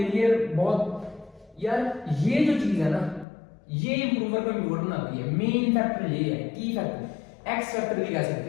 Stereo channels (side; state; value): right; drops out; at 3.2 s